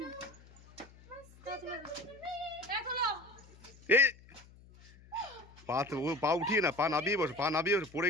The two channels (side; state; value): left; noise; hum, 23 dB below the sound